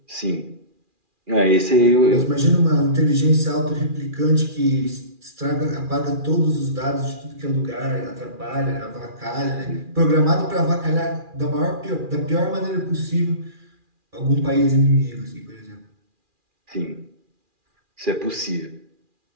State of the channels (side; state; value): left; late; 2.4 ms